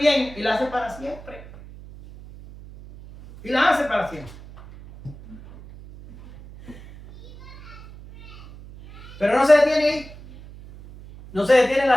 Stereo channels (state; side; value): noise; right; hum, 18 dB below the sound